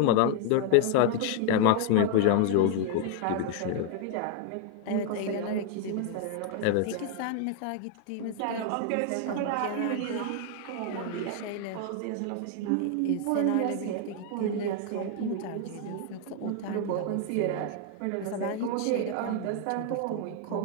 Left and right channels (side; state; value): both; different; correlation 0.00